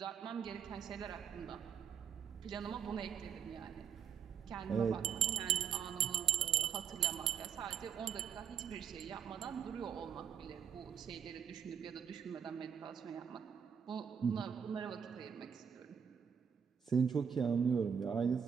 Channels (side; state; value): left; quieter; 7.8 dB